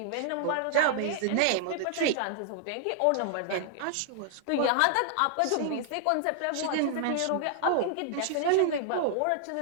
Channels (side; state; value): both; different; correlation -0.01